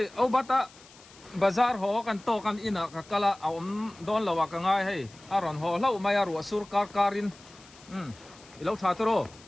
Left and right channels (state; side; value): noise; left; hiss, 23 dB below the sound